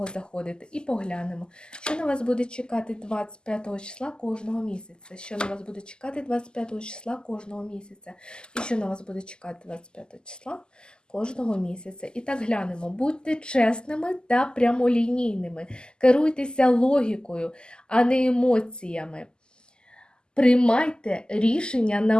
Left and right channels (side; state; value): right; late; 0.046 ms